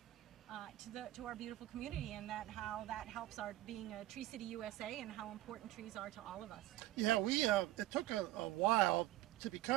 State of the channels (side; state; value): left; quieter; 15.8 dB